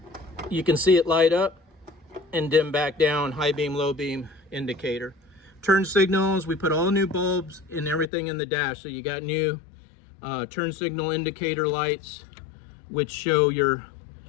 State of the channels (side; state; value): right; drops out; at 8.1 s